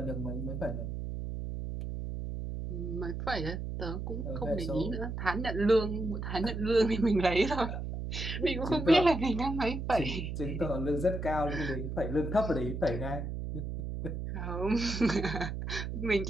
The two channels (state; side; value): noise; right; hum, 4 dB below the sound